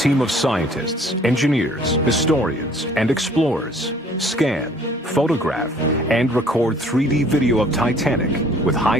of scientists, engineers, historians, and explorers scan, photograph, and record 3D video of Titanic with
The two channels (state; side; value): normal; both; correlation 0.56